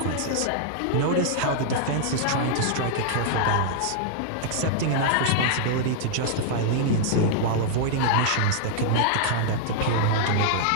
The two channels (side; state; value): both; different; correlation -0.01